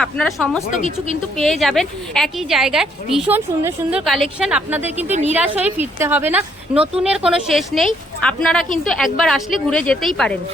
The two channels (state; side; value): normal; both; correlation 0.69